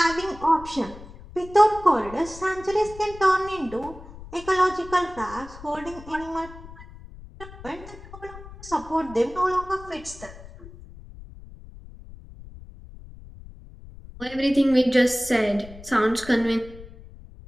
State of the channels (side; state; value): left; noise; rumble, 17 dB below the sound